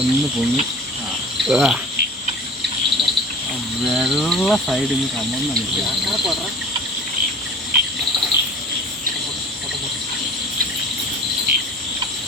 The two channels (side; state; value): both; normal; correlation 0.40